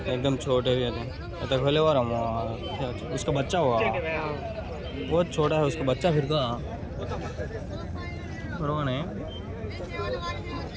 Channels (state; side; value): identical; both; correlation 1.00